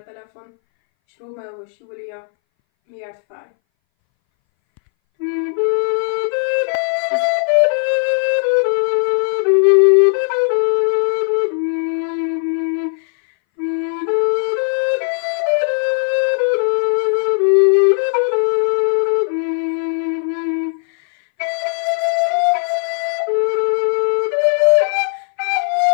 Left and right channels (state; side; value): silent; right; 62 dB below the other